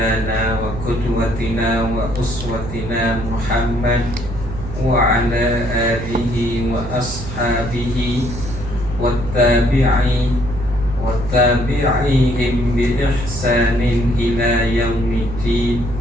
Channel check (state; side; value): noise; right; hum, 9 dB below the sound